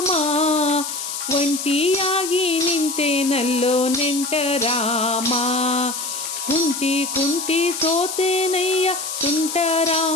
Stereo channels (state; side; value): noise; left; hiss, 5 dB below the sound